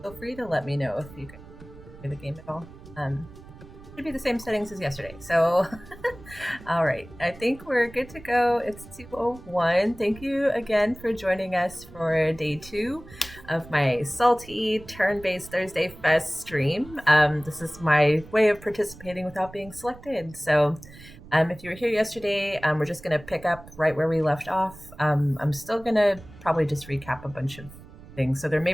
feel free to let me know if you can hear the game at all. Should be the same settings as yesterday. So, all right. I think we're good to go. It's 2:01. Thank you again for joining us for day 2 of my salty turn-based Thursday Fest stream. This is my way of participating without being selected. So, if you were here yesterday, we're just going to pick up right where we left off. I'm still going to probably just recap a bunch of things. So, there may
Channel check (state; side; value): noise; right; rumble, 19 dB below the sound